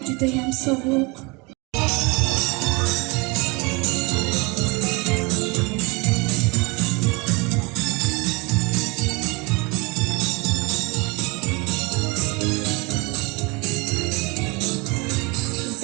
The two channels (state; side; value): quieter; left; 27.5 dB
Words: Juda ham sovuq.